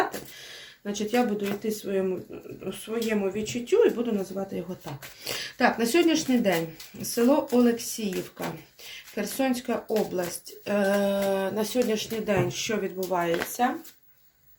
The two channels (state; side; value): identical; both; correlation 1.00